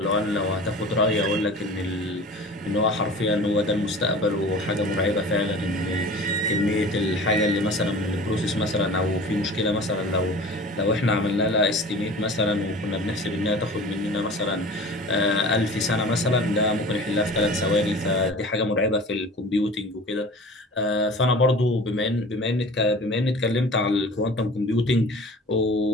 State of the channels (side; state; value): both; normal; correlation 0.40